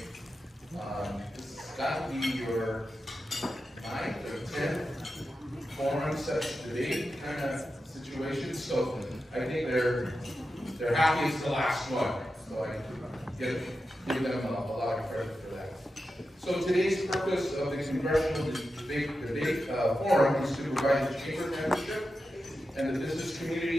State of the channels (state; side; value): normal; both; correlation 0.90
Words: This has got to be your 9th or 10th forum such debate kind of situation, so I think they're happy it's the last one. So I give them a lot of credit for that. So today's purpose of the Congressional Debate Forum is to provide the Chamber membership and the business